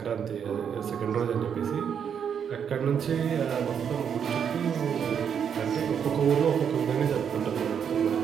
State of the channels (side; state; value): left; quieter; 7.7 dB